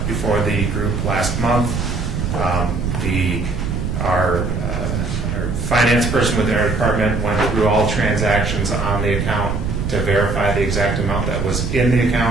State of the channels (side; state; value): right; noise; rumble, 2 dB below the sound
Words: before the group last month. Our finance person within our department went through all transactions on the account to verify the exact amount that was in the